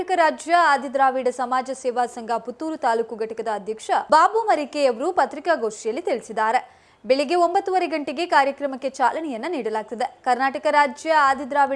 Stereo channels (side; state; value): both; identical; correlation 1.00